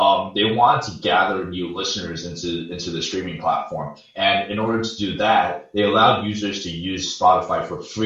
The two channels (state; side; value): identical; both; correlation 1.00